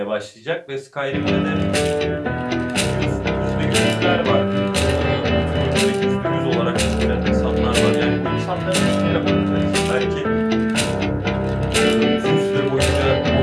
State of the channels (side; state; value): both; identical; correlation 1.00